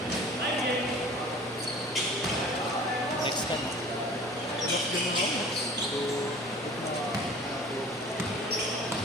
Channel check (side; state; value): both; normal; correlation 0.44